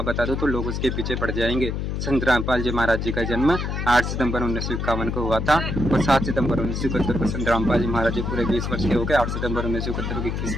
बता दो तो लोग उसके पीछे पड़ जाएंगे। संत रामपाल जी महाराज जी का जन्म 8 सितंबर 1951 को हुआ था और 7 सितंबर 1971 को संत रामपाल जी महाराज जी पूरे 20 वर्ष के हो गए। 8 सितंबर 1971 को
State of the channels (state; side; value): noise; left; hum, 2 dB below the sound